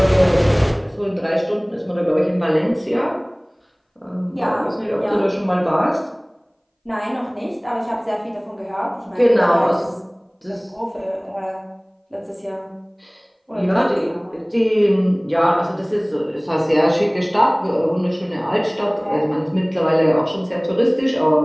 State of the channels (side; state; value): both; identical; correlation 1.00